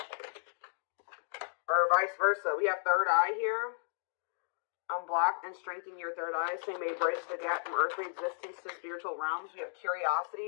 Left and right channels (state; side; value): silent; right; digital silence